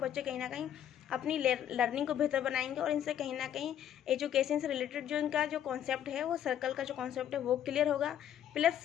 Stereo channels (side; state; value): right; quieter; 10.2 dB